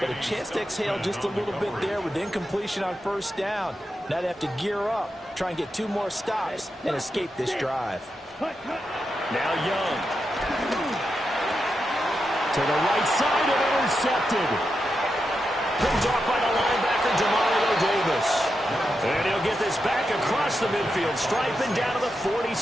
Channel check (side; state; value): both; normal; correlation 0.87